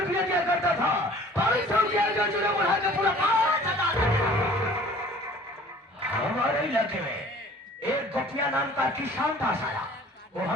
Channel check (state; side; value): normal; both; correlation 0.50